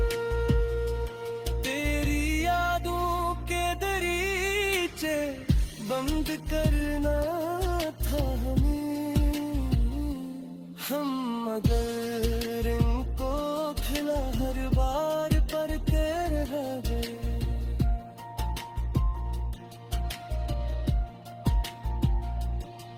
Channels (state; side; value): identical; both; correlation 1.00